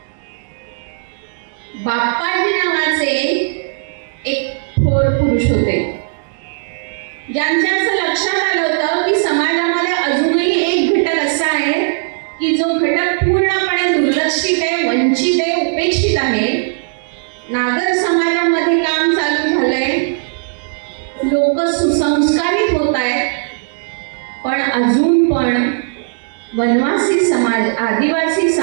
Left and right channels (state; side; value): silent; left; digital silence